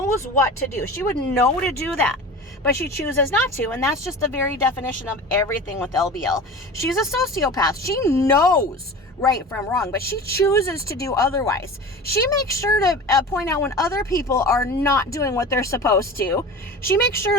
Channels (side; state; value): both; normal; correlation 0.34